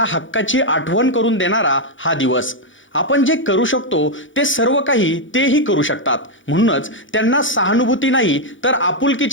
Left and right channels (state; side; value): late; right; 0.56 ms